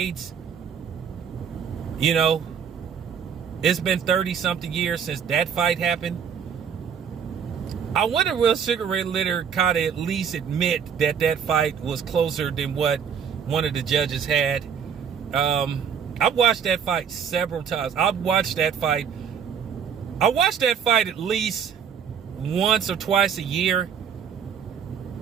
you know, it's been 30-something years since that fight happened. I wonder, will Sugar Ray Leonard kind of at least admit that that fight was closer than what one of the judges had? I've watched that fight several times. I watched that fight at least once or twice a year.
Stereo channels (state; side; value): quieter; left; 7.5 dB